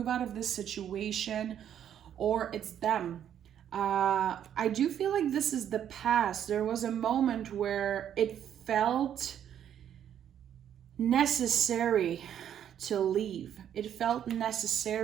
out of this situation, or it's them. I do feel like this is the past. There was a moment where it felt necessary to leave. It felt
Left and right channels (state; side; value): quieter; left; 9.8 dB